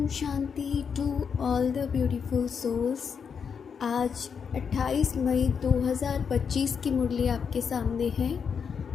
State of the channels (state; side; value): quieter; right; 6.5 dB